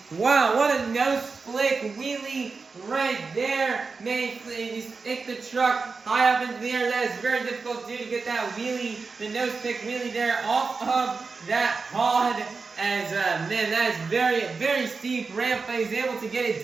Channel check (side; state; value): left; quieter; 4.5 dB